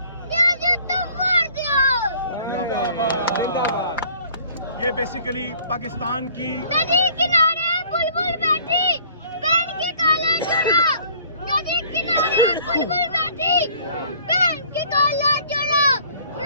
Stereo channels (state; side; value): inverted; both; correlation -0.55